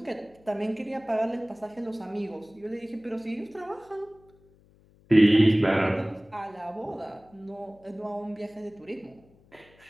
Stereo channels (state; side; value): noise; left; hum, 29 dB below the sound